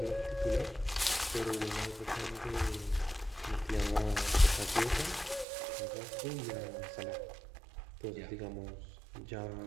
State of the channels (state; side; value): drops out; left; at 5.5 s